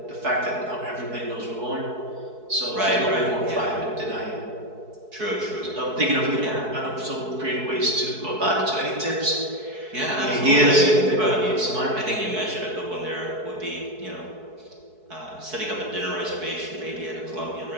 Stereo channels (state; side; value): late; left; 4.6 ms